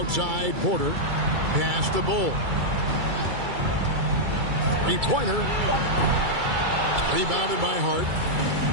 Porter. Pass to Bull. Three-pointer. Rebounded by Hart.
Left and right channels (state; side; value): late; left; 2.3 ms